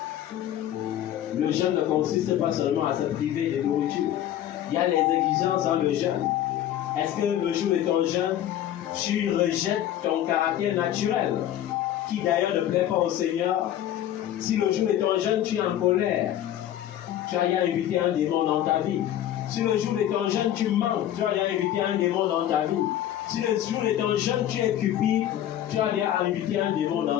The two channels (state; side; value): quieter; right; 11.8 dB